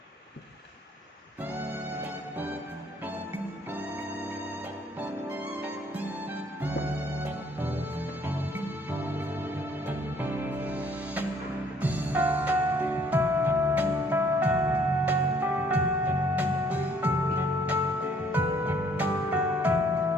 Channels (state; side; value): normal; both; correlation 0.61